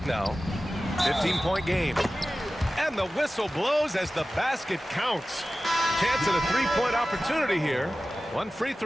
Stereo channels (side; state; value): both; normal; correlation 0.95